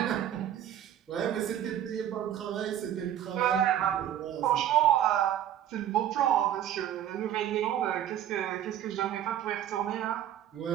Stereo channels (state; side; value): quieter; left; 10.9 dB